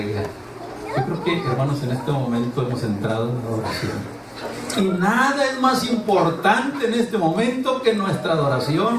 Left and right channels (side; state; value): both; identical; correlation 1.00